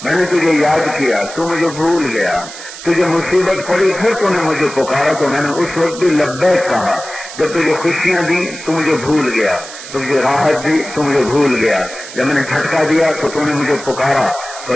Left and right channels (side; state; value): right; noise; hiss, 13 dB below the sound